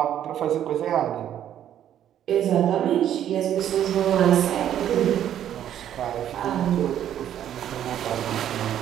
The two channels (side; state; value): left; quieter; 10.7 dB